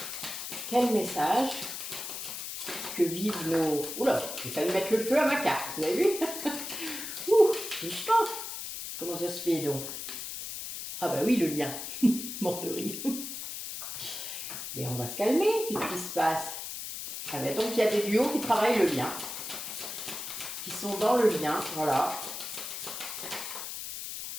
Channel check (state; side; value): noise; left; hiss, 7 dB below the sound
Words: Quel message que vivent nos... Oula, j'ai failli mettre le feu à ma carte, vous avez vu? Ouh, doucement. Comment ça se fait donc? Ah bah oui, le lien. Mort de rire. Mais on va se calmer, qu'est-ce qui se passe? Ah bah donc il y a des duos qui travaillent le lien. Qui sont dans le lien, voilà.